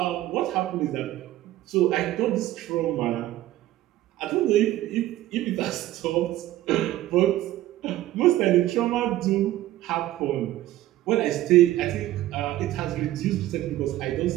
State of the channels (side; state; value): left; quieter; 14.8 dB